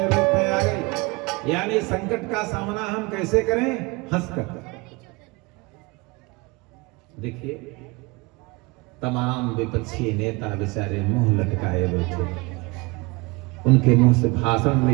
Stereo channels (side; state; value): left; quieter; 25.6 dB